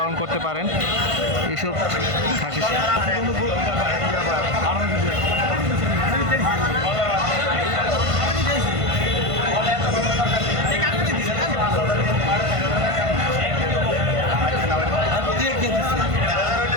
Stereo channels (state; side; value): late; left; 1.5 ms